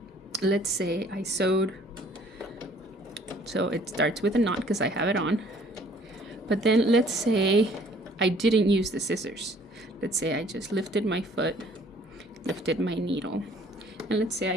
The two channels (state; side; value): normal; both; correlation 0.57